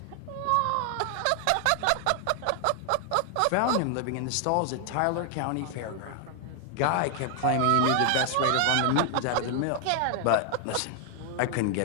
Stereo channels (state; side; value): different; both; correlation 0.00